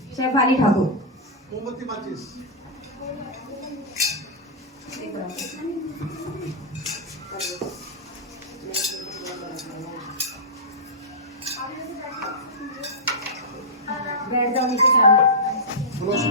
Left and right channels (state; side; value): normal; both; correlation -0.11